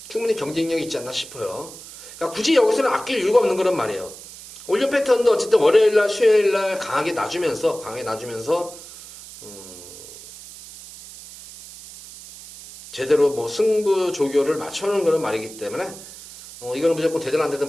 충분히 경쟁력이 있지 않나 싶어요. 그러니까 굳이 여기서는 아낄 이유가 없는 그런 말이에요. 올려 패턴도 어쨌든 월요일날 수요일날 강하게 놔주면서 제대로 뭐 승부 조교를 맞춰놓은 그런 말이기 때문에 이거는 무조건 되든 안 되든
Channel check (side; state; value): right; noise; hiss, 16 dB below the sound